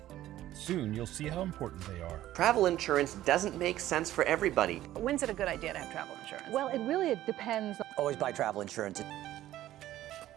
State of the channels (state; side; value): quieter; left; 13.9 dB